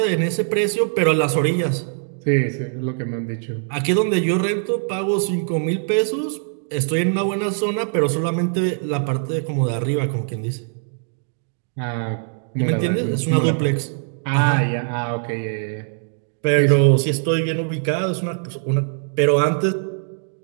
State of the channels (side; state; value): left; silent; digital silence